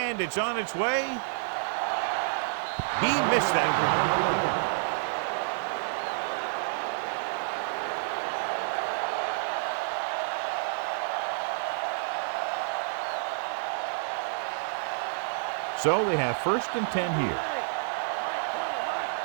it's on its way. He missed that one. So we have 1st and 10 here.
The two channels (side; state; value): left; silent; digital silence